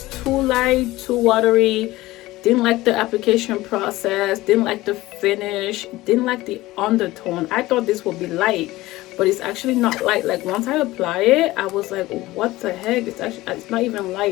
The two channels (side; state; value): right; quieter; 18.2 dB